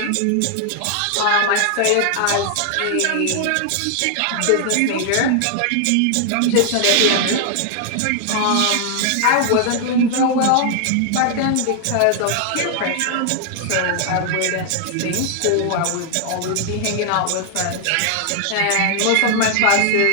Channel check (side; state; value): both; different; correlation 0.00